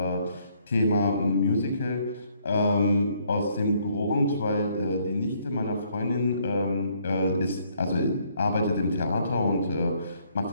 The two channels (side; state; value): both; inverted; correlation -0.68